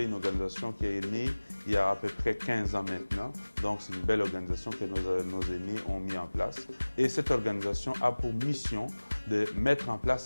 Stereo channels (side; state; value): both; inverted; correlation -1.00